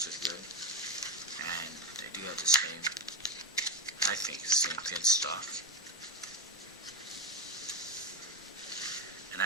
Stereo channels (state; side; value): normal; both; correlation 0.14